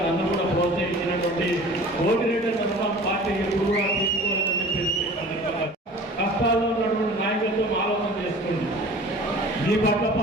నన్ను కూడా ప్రోత్సహించినటువంటి కోటిరెడ్డి అన్న పార్టీ ఎప్పుడు కూడా తీసుకోలేదని చెప్పేసి కష్టాల్లో ఉన్నటువంటి నాయకులతో ఆలోచన చేసుకోండి. మీ పట్ల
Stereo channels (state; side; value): normal; both; correlation 0.43